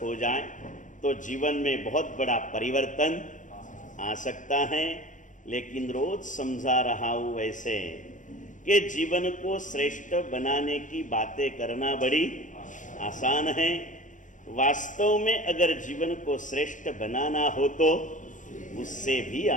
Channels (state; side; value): late; right; 0.37 ms